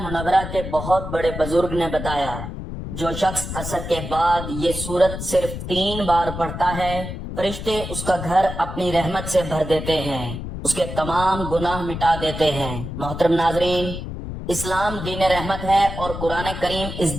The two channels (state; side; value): noise; left; rumble, 7 dB below the sound